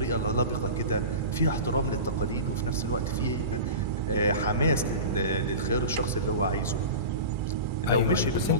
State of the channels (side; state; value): both; inverted; correlation -0.31